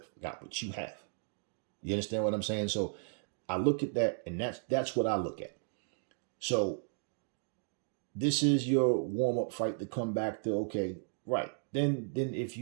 but you have. You understand what I'm saying? So I look at that, and that's what I look at. So this is your warm-up fight to come back to, okay, right. Then if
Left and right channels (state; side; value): silent; left; digital silence